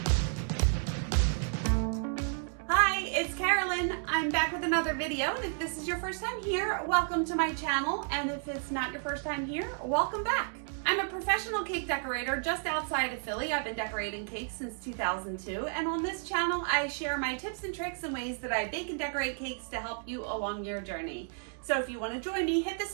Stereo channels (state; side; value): silent; left; 56 dB below the other